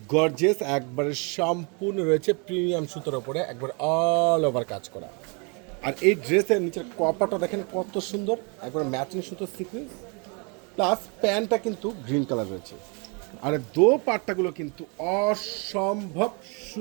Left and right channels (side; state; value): left; quieter; 33.8 dB